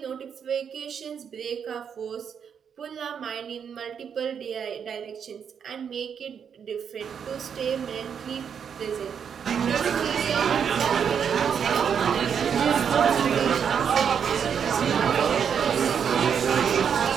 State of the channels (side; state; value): left; quieter; 7.4 dB